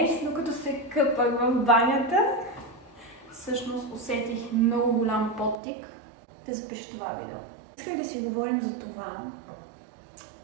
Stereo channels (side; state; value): left; drops out; at 5.6 s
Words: докато се къпах в банята, всъщност усетих много голям подтик да запиша това видео. Исках да си говорим за това,